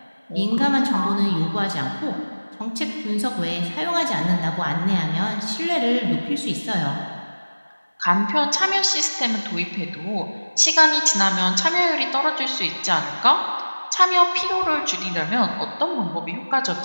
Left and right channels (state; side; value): inverted; both; correlation -1.00